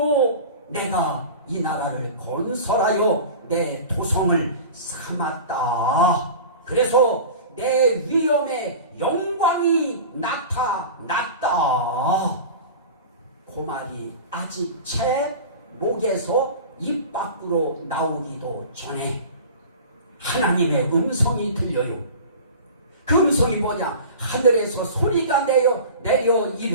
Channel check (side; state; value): both; inverted; correlation -0.36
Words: 내가 이 나라를 건설하여 내 토성을 삼았다. 그래서 내 위엄의 영광이 나타났다. 그 말이 아직 제 목에서 입 밖으로 나오기도 전에 하나님의 음성이 들려요. 그 음성이 뭐냐? 하늘에서 소리가 내려